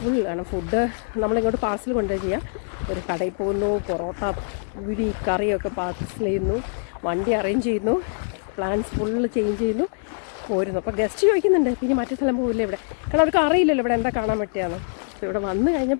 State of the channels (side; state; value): right; silent; digital silence